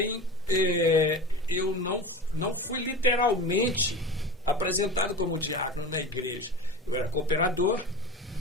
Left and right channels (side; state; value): both; normal; correlation 0.32